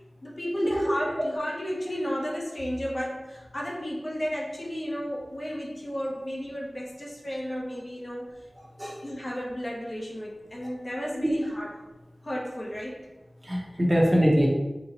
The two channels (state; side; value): normal; both; correlation 0.98